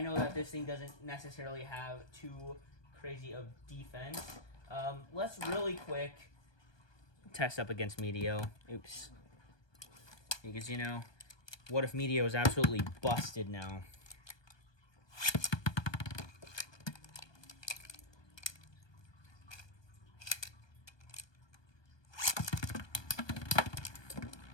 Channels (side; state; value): right; late; 1.2 ms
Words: know that this thing doesn't necessarily have too crazy of defense. Let's really quick test up against Meteo. Oops. Because, you know, what if Meteo is absolutely busted now?